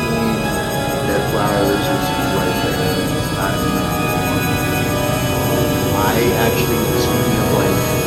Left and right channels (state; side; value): identical; both; correlation 1.00